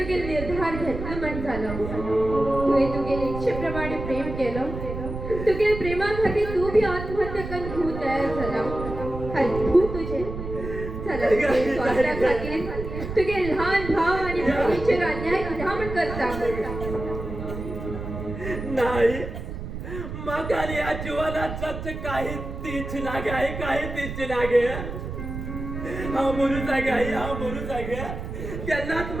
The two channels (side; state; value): right; noise; rumble, 7 dB below the sound